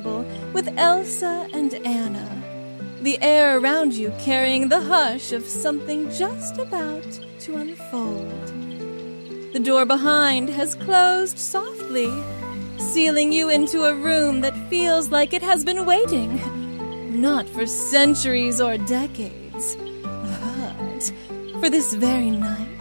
with Elsa and Anna, the air around you carrying the hush of something just about to unfold. The door behind has closed softly, sealing you into a room that feels like it has been waiting, not for centuries or decades, but for this very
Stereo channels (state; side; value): inverted; both; correlation -1.00